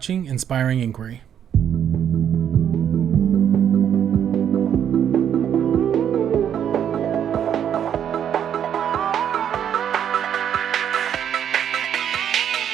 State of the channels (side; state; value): left; quieter; 9.2 dB